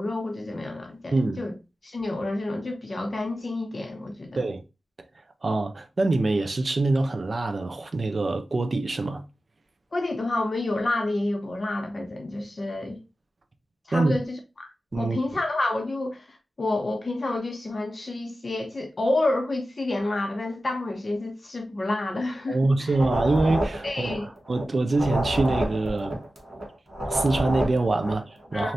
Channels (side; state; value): both; normal; correlation 0.94